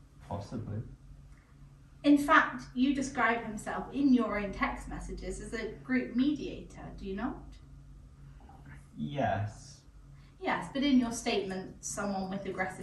Possibly. In fact, you describe himself in your own text messages as a group mediator, do you not? Yes. Yes, but in your statement, someone with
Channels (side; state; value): both; identical; correlation 1.00